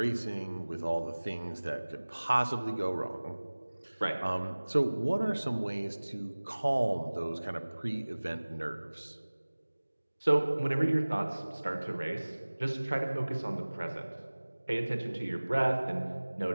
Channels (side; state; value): both; inverted; correlation -1.00